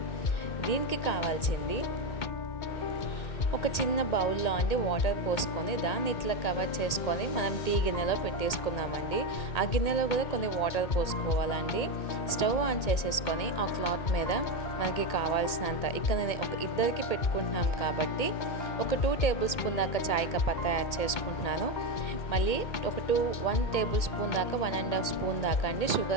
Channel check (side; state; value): right; late; 1.8 ms